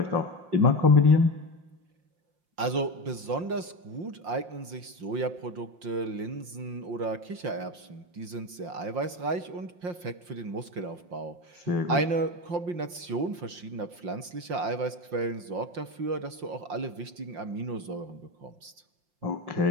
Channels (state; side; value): late; left; 5.7 ms